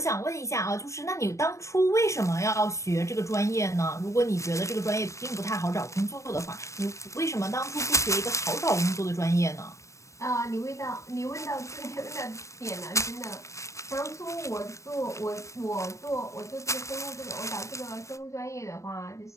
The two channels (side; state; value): right; late; 0.15 ms